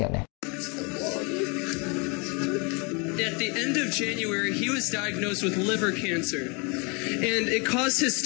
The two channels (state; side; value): quieter; right; 31.5 dB